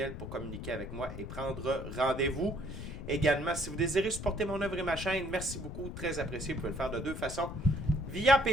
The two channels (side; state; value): left; noise; rumble, 8 dB below the sound